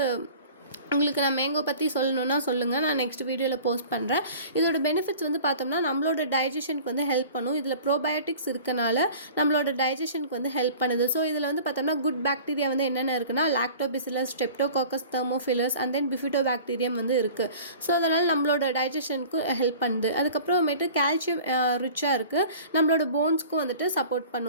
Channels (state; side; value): inverted; both; correlation -0.43